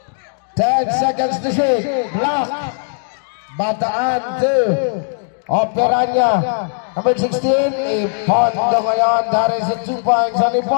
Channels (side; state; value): right; silent; digital silence